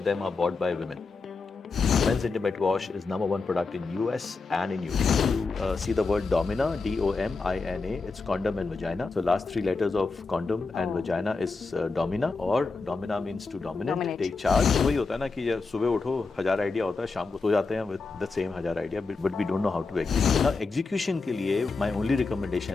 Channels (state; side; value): quieter; right; 4.1 dB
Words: them are bought by women. Men's intimate wash is #1 product in US and in UK. You see the word Domina, D-O-M-I-N-A, it's condom and vagina. So last 3 letters of condom and vagina is Domina, or Domina means to dominate, take charge. वही होता है ना कि सुबह उठो 1000 idea होता है, शाम को सो जाते हैं with the same 1000 idea, but we don't know how to execute. Now execution के लिए my only